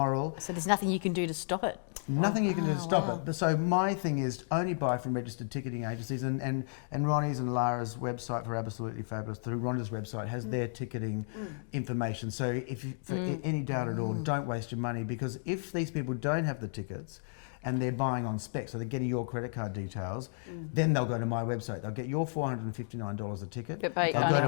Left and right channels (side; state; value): right; silent; digital silence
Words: So there's nothing you can do to stop it. Nothing you can do to stop it. But so my thing is only buy from registered ticketing agencies, and Ronnie's and Lara's website for ABBA-solutely Fabulous through Rhonda's website has their ticketing information. So if you, for any doubt at all, don't waste your money, because if these people don't have the tickets and they're buying on spec, so they're getting your credit card details, then they'll go to my website. They'll get your $459 a ticket. They'll go